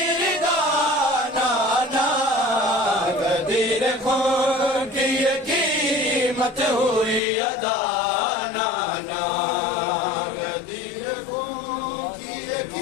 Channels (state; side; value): drops out; right; at 7.2 s